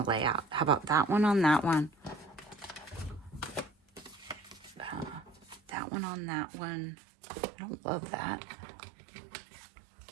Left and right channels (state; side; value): drops out; left; at 5.8 s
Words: to lay out. How about that one on that one? That one on that one. I don't love that.